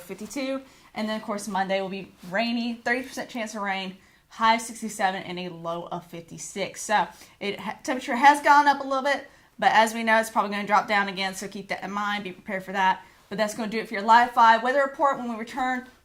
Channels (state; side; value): identical; both; correlation 1.00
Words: 52. And then, of course, Monday will be rainy, 30% chance of rain, high of 67 and a low of 56. So, temperature has gone up a little bit, but as we know, it's probably going to drop down again, so keep that in mind, be prepared for that. But that's going to do it for your Live 5 weather report. When we return,